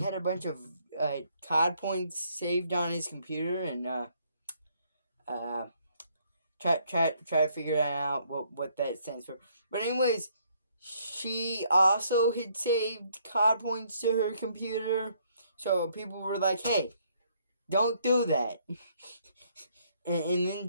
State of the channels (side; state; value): both; inverted; correlation -0.68